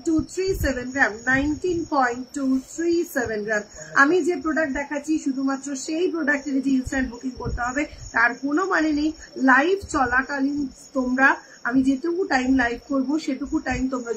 গ্রাম 19.237 গ্রাম আমি যে প্রোডাক্ট দেখাচ্ছি শুধুমাত্র সেই প্রোডাক্টের যে ইনস্ট্যান্ট বুকিং করতে হবে তার কোনো মানে নেই লাইভ চলাকালীন তোমরা আমি যেটুকু টাইম লাইভ করবো সেটুকু টাইম তোমরা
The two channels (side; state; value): both; identical; correlation 1.00